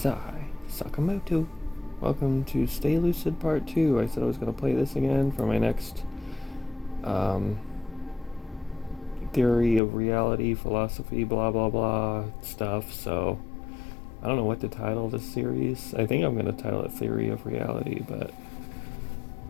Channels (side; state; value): right; drops out; at 9.8 s